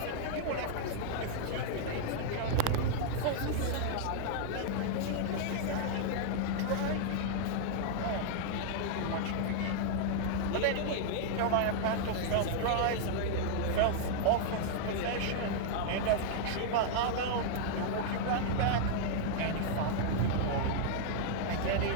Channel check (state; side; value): different; both; correlation -0.01